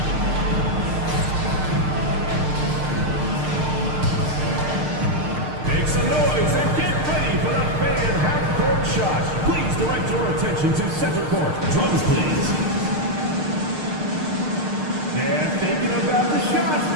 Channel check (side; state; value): left; late; 6.5 ms